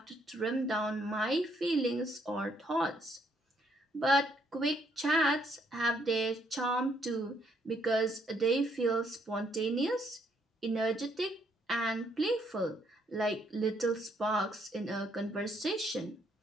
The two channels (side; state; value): both; normal; correlation 0.71